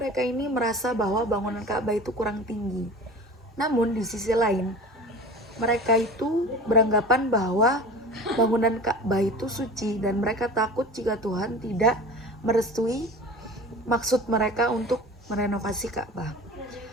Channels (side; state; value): both; normal; correlation 0.38